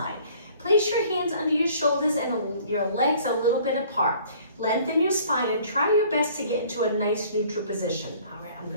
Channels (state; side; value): inverted; both; correlation -0.54